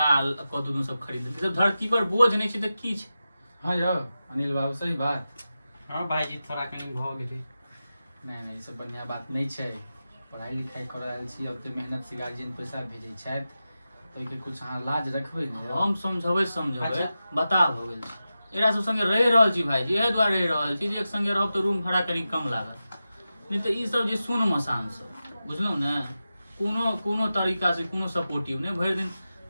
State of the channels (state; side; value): inverted; both; correlation -0.92